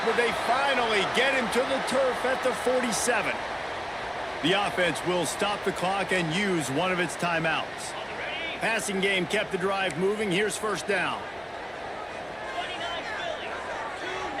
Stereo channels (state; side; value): identical; both; correlation 1.00